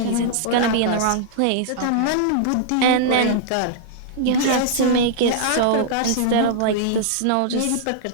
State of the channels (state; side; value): different; both; correlation -0.01